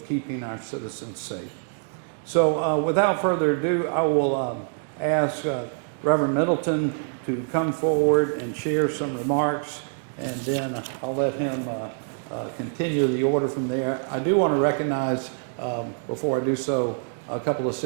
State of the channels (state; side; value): silent; left; digital silence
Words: keeping our citizens safe. So without further ado, I will ask Reverend Middleton to come forward and share some remarks, and then I'll let him continue the order from there. I do want to recognize, before I do so, a couple of